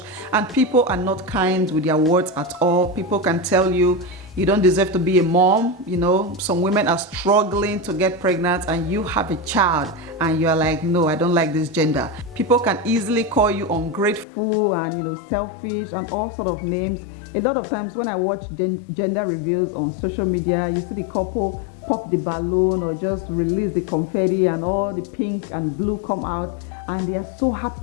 and people are not kind with their words at all. People can tell you you don't deserve to be a mom. Some women are struggling to get pregnant and you have a child and you're like, no, I don't like this gender. People can easily call you ungrateful and selfish and all sort of names. A lot of times when I watch gender reviews on social media, you see the couple pop the balloon or just release the confetti and all the pink and blue come out, and they are so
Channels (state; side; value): drops out; right; at 14.2 s